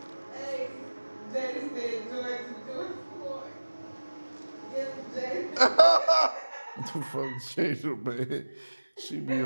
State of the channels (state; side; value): inverted; both; correlation -1.00